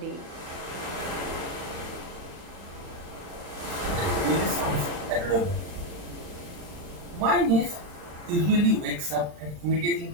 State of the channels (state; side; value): late; left; 40 ms